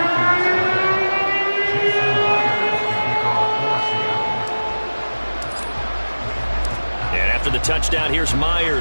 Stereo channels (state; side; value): inverted; both; correlation -1.00